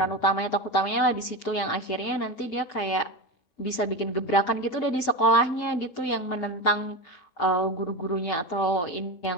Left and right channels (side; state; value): right; late; 5.8 ms